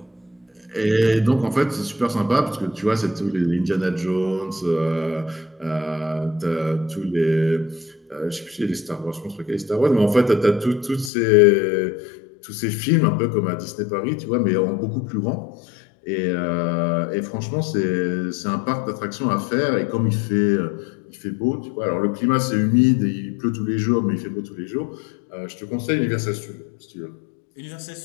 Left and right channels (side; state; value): right; drops out; at 11.1 s